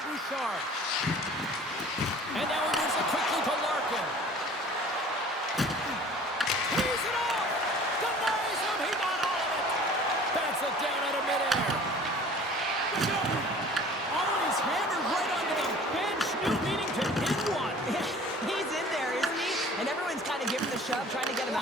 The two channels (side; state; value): both; normal; correlation 0.47